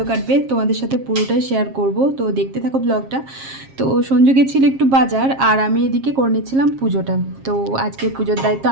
কাটবে। তোমাদের সাথে পুরোটাই শেয়ার করব, তো দেখতে থাকো ব্লগটা। তো সঞ্জু গেছিল একটু বাজার, আর আমি এদিকে করে নিচ্ছিলাম পুজোটা। তো আজকে পুজোর দায়িত্ব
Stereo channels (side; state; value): left; late; 7.4 ms